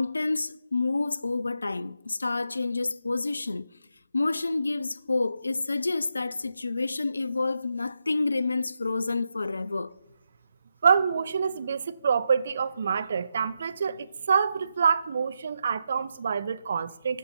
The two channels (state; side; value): inverted; both; correlation -0.86